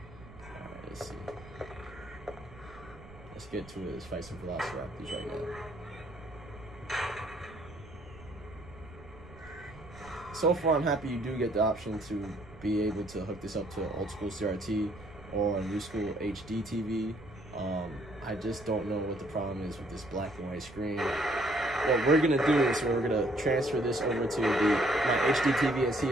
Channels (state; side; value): noise; right; rumble, 19 dB below the sound